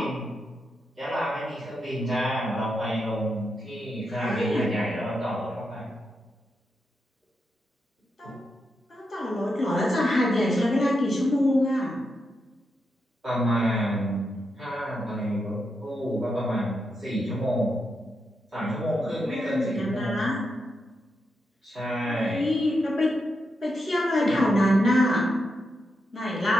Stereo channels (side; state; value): both; normal; correlation 0.84